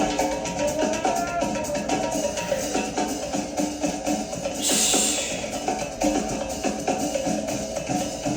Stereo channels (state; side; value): identical; both; correlation 1.00